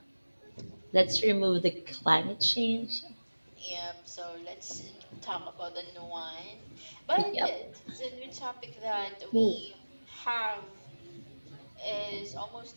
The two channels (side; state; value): both; inverted; correlation -1.00